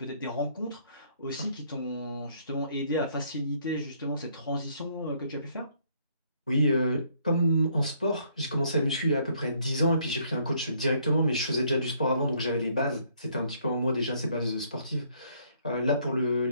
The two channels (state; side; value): inverted; both; correlation -0.66